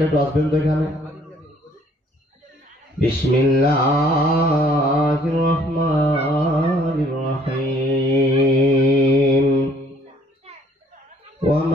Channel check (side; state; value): both; normal; correlation 0.60